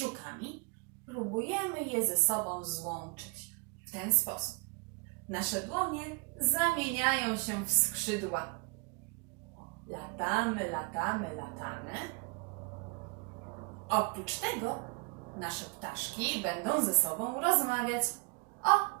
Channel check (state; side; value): quieter; left; 29.6 dB